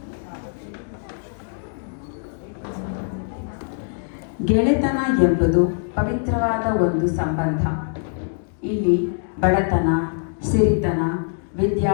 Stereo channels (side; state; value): right; silent; digital silence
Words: ಗೆಳೆತನ ಎಂಬುದು ಪವಿತ್ರವಾದ ಒಂದು ಸಂಬಂಧ. ಇಲ್ಲಿ ಬಡತನ, ಸಿರಿತನ,